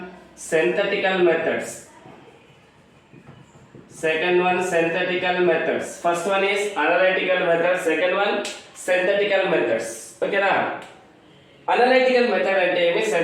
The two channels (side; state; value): both; identical; correlation 1.00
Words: synthetical methods. First one is analytical methods, second one synthetical methods. Okay na, analytical method ante emi,